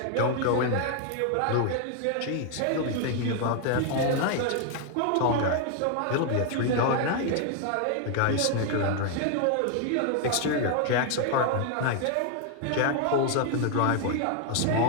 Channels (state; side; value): different; both; correlation 0.00